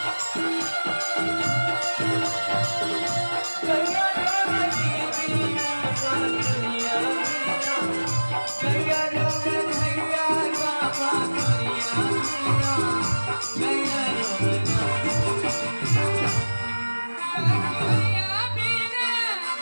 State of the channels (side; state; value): both; inverted; correlation -1.00